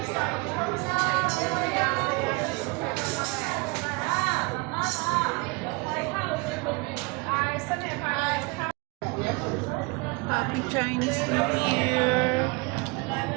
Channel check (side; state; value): left; quieter; 28.0 dB